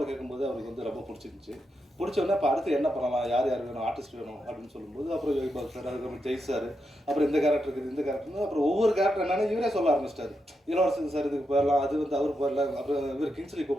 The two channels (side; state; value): both; normal; correlation 0.84